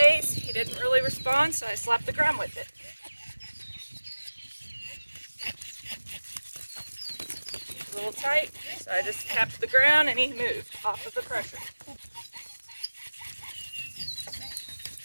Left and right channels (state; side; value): inverted; both; correlation -1.00